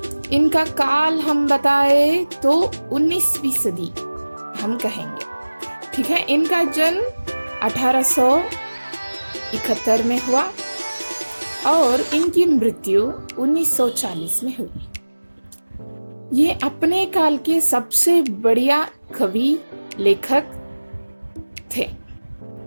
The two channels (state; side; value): inverted; both; correlation -1.00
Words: इनका काल हम बताए तो 19वीं सदी हम कहेंगे, ठीक है। इनका जन्म 1871 में हुआ और इनकी मृत्यु 1940 में हुई। ये अपने काल के सबसे बढ़िया कवि लेखक थे।